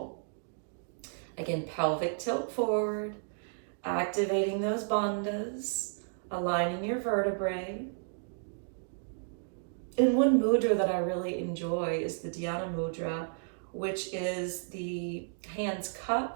Again, pelvic tilt forward, activating those bandhas, aligning your vertebrae. And one mudra that I really enjoy is the Dhyana mudra, which is the hands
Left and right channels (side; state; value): left; silent; digital silence